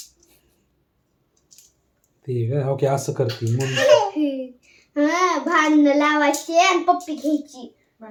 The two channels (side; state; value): both; identical; correlation 1.00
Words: ते ओके असं करते म्हणून भांडण लावायची आणि पप्पी घ्यायची